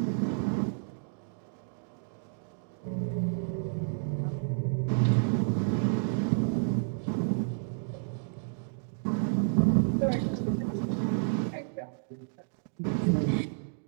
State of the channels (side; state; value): left; silent; digital silence